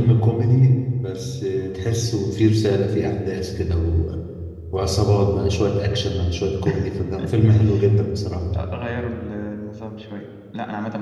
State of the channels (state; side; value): identical; both; correlation 1.00